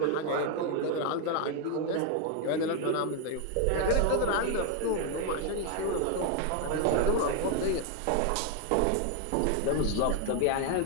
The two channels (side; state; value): both; different; correlation 0.01